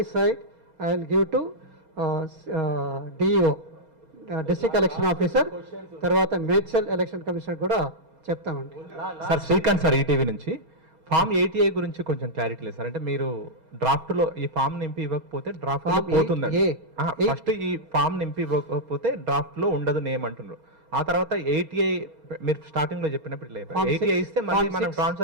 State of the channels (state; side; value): late; left; 4.3 ms